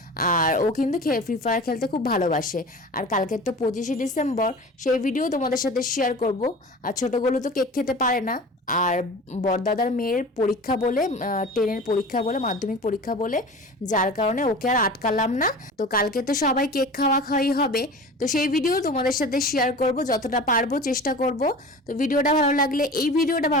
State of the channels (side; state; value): both; normal; correlation 0.37